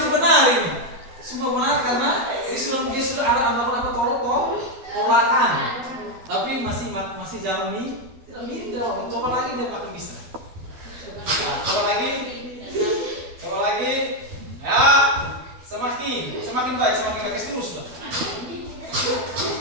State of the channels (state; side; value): late; left; 12 ms